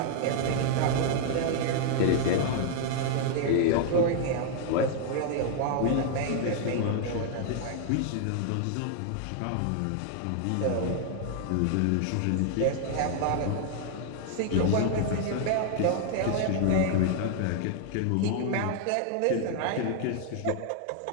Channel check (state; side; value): different; both; correlation 0.00